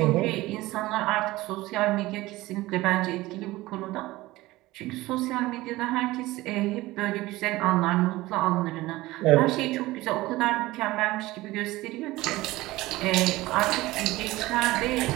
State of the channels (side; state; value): left; quieter; 18.7 dB